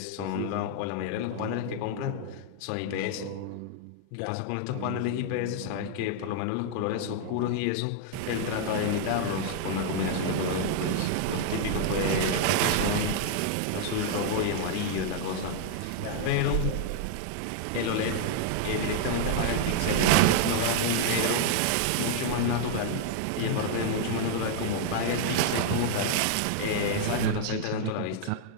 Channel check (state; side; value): different; both; correlation 0.00